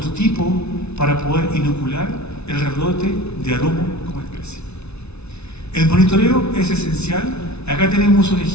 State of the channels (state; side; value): late; right; 0.80 ms